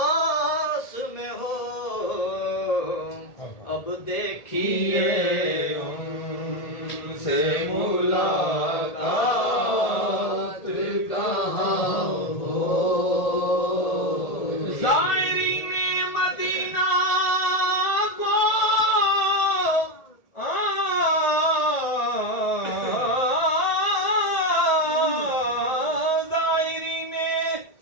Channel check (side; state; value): right; late; 1.8 ms